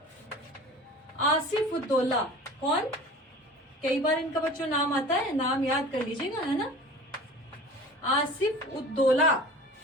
आसिफ उद्दौला, कौन, कई बार इनका बच्चों नाम आता है, नाम याद कर लीजिएगा, है ना। आसिफ उद्दौला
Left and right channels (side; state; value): both; normal; correlation 0.40